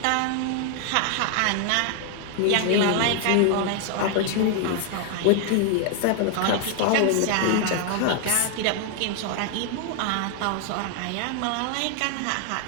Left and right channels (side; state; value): both; different; correlation 0.00